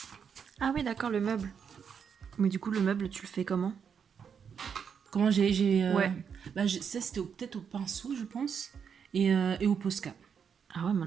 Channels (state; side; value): quieter; left; 7.1 dB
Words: Ah oui, d'accord, le meuble. Mais du coup, le meuble, tu le fais comment ? Comment Ouais. Ça, c'était peut-être au pinceau, je pense. Et au Posca. Ah ouais, mais